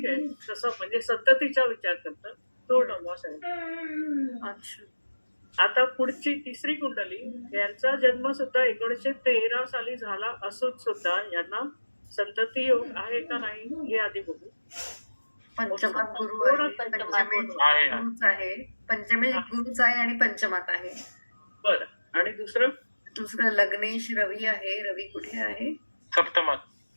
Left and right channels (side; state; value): both; inverted; correlation -1.00